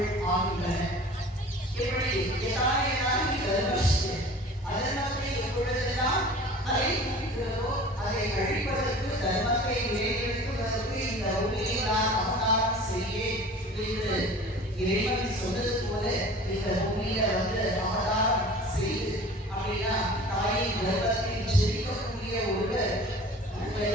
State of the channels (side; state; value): both; normal; correlation 0.43